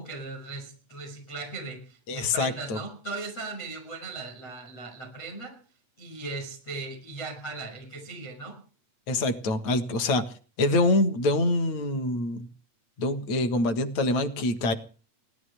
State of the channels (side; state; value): right; late; 8.5 ms